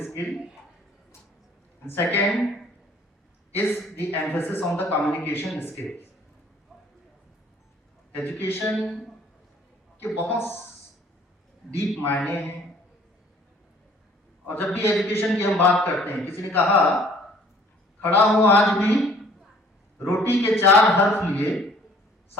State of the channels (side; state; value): both; normal; correlation 0.56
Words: skill, and second is the emphasis on the communication skill. Education के बहुत डीप मायने हैं, और जब भी एजुकेशन की हम बात करते हैं, किसी ने कहा खड़ा हूं आज भी रोटी के 4 हर्फ लिए,